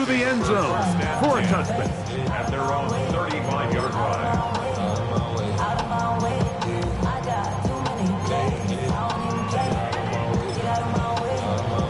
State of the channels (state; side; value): identical; both; correlation 1.00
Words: the end zone for a touchback. At their own 35-yard line.